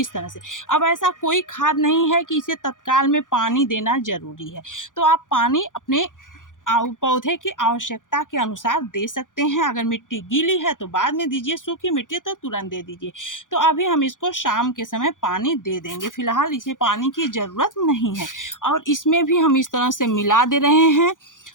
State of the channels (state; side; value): late; right; 0.88 ms